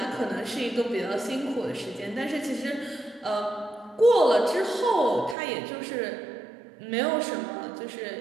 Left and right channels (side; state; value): left; drops out; at 5.4 s